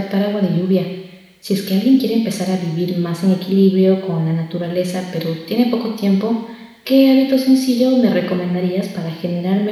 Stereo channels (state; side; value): identical; both; correlation 1.00